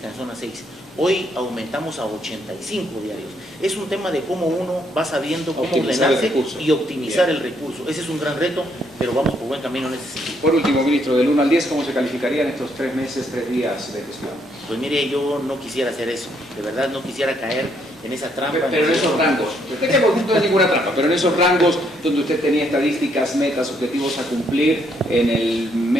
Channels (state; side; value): normal; both; correlation 0.72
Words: en zona 6. Hoy aumentamos a 85 diarios. Es un tema de cómo uno va sabiendo cómo ordenarse y optimizar el recurso. Ese es un gran reto, pero vamos por buen camino en ese sentido. Por último, ministro, del 1 al 10, ¿cómo se calificarían estos 3 meses, 3 días de gestión? Pues mire, yo no quisiera hacer eso, de verdad no quisiera caer en esa trampa. Pero en esos rangos, usted que no es ninguna trampa, pero en esos rangos donde usted tenía estadísticas, metas, objetivos a cumplir, en el